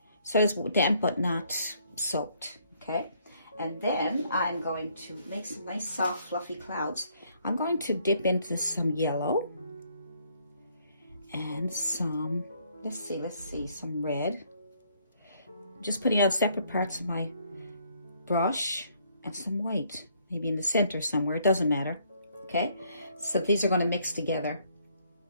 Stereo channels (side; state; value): both; inverted; correlation -0.67